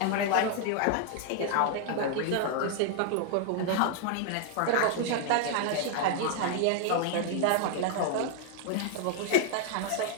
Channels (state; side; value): different; both; correlation 0.00